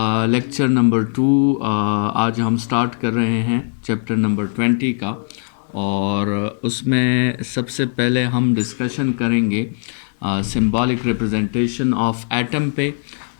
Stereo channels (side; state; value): right; silent; 66 dB below the other